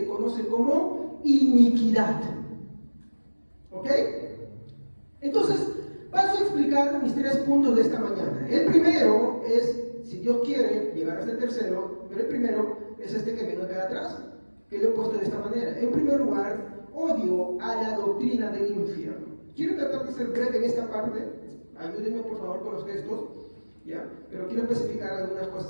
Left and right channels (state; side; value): inverted; both; correlation -1.00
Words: conoce como iniquidad. ¿Ok? Entonces, paso a explicar mis 3 puntos de esta mañana. El primero es, si Dios quiere llegar hasta el tercero, pero el primero es este que viene acá atrás, que lo he puesto de esta manera. En primer lugar, odio a la doctrina del infierno. Quiero tratar de ser breve en esta parte, ayúdenme por favor con los textos, ¿ya? Pero quiero especificar algunas